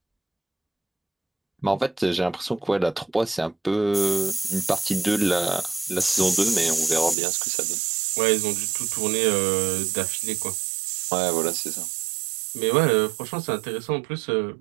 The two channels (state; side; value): drops out; left; at 7.2 s